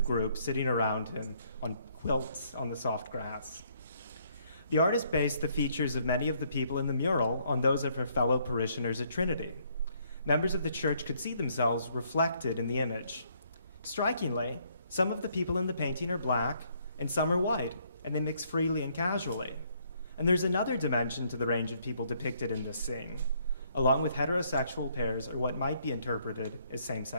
group sitting around him on quilts on the soft grass. The artist based the features of many of the people in the mural on those of her fellow parishioners at Trinity. Members of the church could see themselves reflected in the image. Strikingly, some of the people in the painting are black and some are white, and they mix freely and casually. And there's another dimension to the range of people depicted in this scene, along with heterosexual pairs or what might be interpreted as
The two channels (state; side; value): inverted; both; correlation -0.68